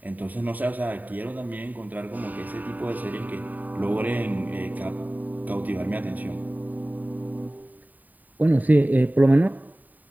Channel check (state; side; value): late; left; 0.083 ms